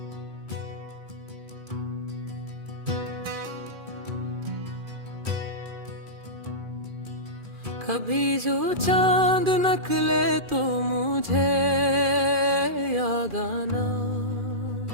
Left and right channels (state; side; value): late; left; 2.4 ms